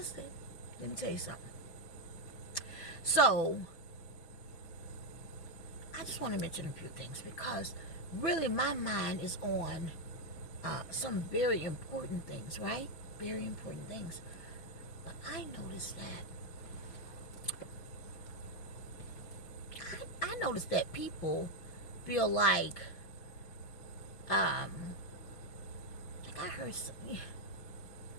Let me tell you something. So, I just want to mention a few things because really my mind is on some very important things, right? Very important things. But I noticed that people feel like I heard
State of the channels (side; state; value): right; late; 6.1 ms